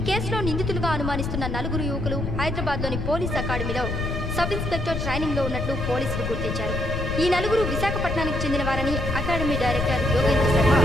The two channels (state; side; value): noise; left; rumble, 4 dB below the sound